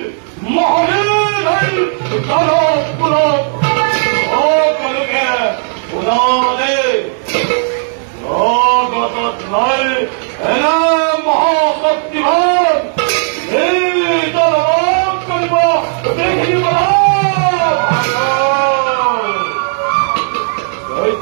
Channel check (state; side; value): silent; left; 68 dB below the other